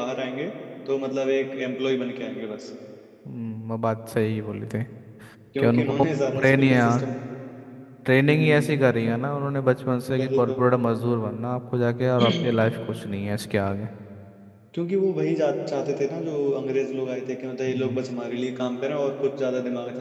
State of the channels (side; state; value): both; identical; correlation 1.00